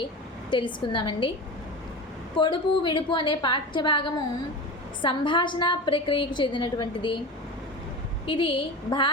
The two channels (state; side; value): normal; both; correlation 0.28